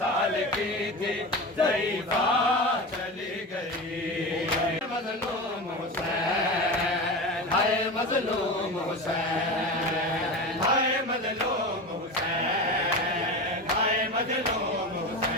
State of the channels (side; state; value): both; normal; correlation 0.26